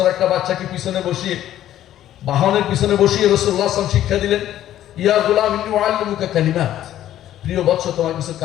একটা বাচ্চাকে পিছনে বসিয়ে, বাহনের পিছনে বসিয়ে রাসূলুল্লাহ সাল্লাল্লাহু আলাইহি ওয়াসাল্লাম শিক্ষা দিলেন, ইয়া গুলাম ইন্নী উআল্লিমুকা কালিমাত, প্রিয় বৎস তোমাকে কিছু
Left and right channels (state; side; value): quieter; right; 12.4 dB